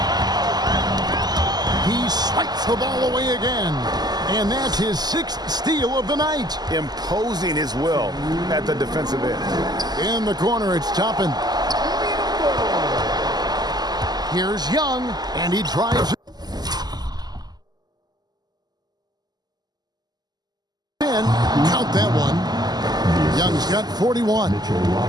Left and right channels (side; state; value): left; late; 0.20 ms